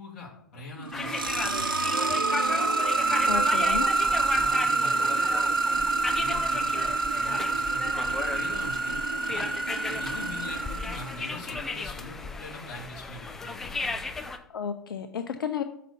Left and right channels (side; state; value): both; normal; correlation 0.74